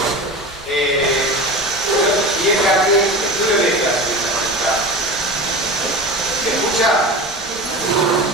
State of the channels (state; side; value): normal; both; correlation 0.30